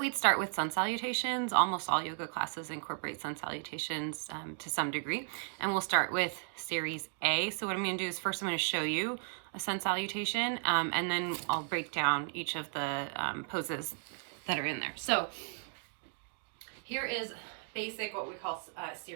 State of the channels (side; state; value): left; silent; 54 dB below the other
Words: we'd start with sun salutations. Almost all yoga classes incorporate sun salutations to some degree. And we'll start with series A. So what I'm going to do is first I'm going to show you a sun salutation, and then I'll break down each of the poses that are in there. So here is basic, what we call